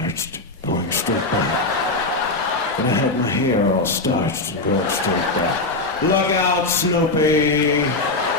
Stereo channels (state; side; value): quieter; right; 3.2 dB